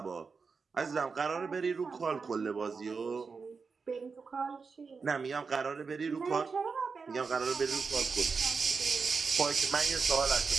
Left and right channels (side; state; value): left; quieter; 5.0 dB